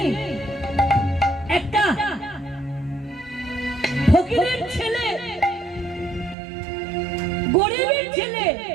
একটা ফকিরের ছেলে, গরিবের ছেলে,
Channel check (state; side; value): drops out; left; at 6.4 s